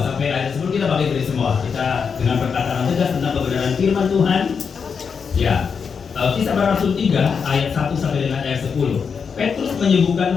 sampai ayat 10 kita pakai dari semua. Kita dengan perkataan tegas tentang kebenaran firman Tuhan. Ya. Kisah Para Rasul 3 ayat 1 sampai dengan ayat 10. Petrus menyembuhkan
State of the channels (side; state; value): right; quieter; 6.1 dB